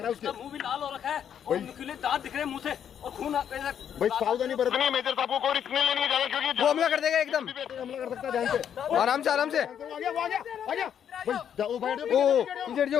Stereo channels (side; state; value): right; quieter; 8.9 dB